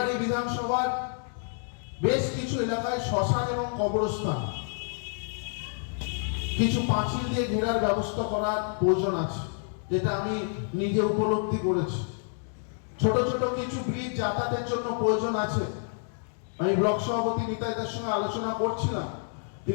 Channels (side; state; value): right; silent; 59 dB below the other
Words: বিধানসভার বেশ কিছু এলাকায় শ্মশান এবং কবরস্থান কিছু পাঁচিল দিয়ে ঘেরার ব্যবস্থা করার প্রয়োজন আছে, যেটা আমি নিজে উপলব্ধি করেছি। ছোট ছোট কিছু ব্রিজ যাতায়াতের জন্য প্রয়োজন আছে। আমি ব্লক সভাপতি নিতাইদার সঙ্গে আলোচনা করছিলাম,